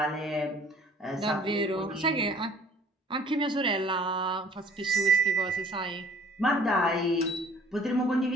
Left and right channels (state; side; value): normal; both; correlation 0.54